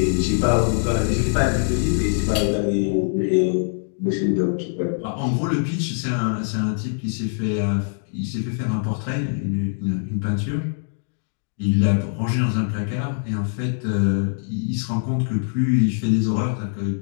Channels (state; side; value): silent; right; digital silence